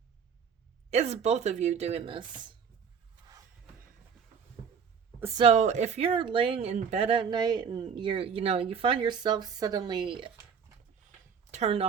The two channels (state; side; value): quieter; left; 6.6 dB